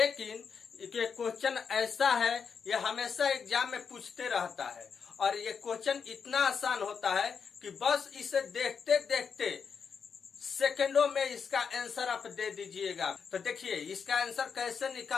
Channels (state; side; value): quieter; right; 6.2 dB